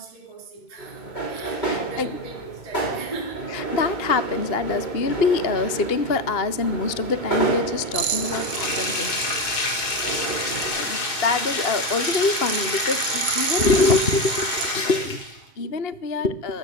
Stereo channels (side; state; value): right; late; 2.5 ms